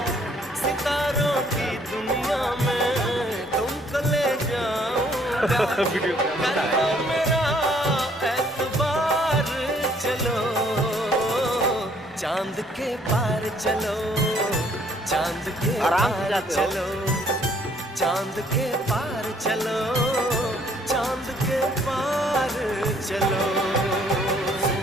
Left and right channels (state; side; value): normal; both; correlation 0.63